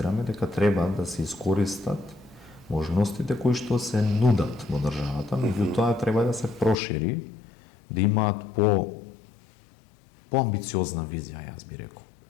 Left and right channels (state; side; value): drops out; right; at 6.8 s